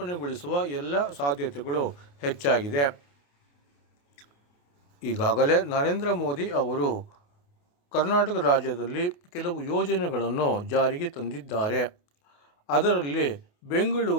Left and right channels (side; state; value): right; late; 28 ms